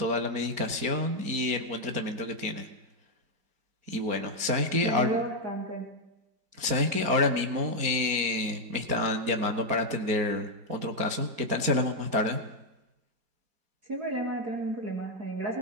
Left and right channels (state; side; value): late; left; 4.4 ms